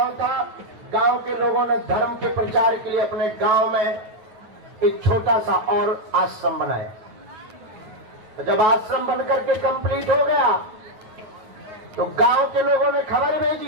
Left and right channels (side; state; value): left; late; 9.3 ms